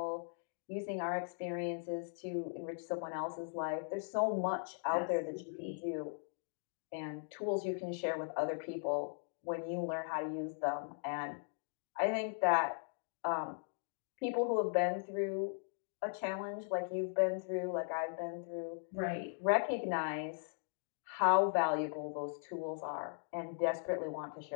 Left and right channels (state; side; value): silent; right; digital silence